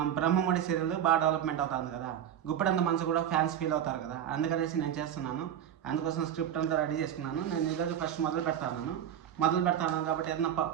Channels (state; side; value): quieter; left; 10.0 dB